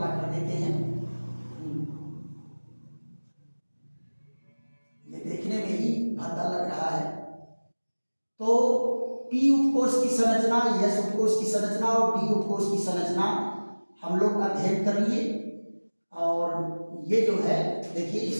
कर देते हैं। ये देखने में ही भद्दा लग रहा है। तो पी उपकोष की संरचना, एस उपकोष की संरचना और डी उपकोष की संरचना हम लोग अध्ययन कर लिए। और ये जो है देखिए,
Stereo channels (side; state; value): both; inverted; correlation -1.00